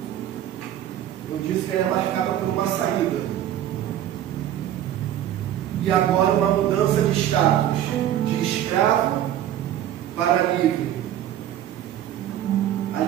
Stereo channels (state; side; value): quieter; left; 11.6 dB